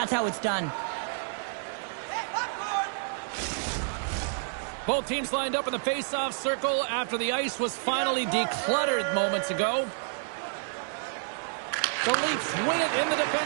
how it's done. Both teams lined up in the face-off circle after the ice was finally decluttered moments ago. The Leafs win it in the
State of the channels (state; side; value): silent; left; digital silence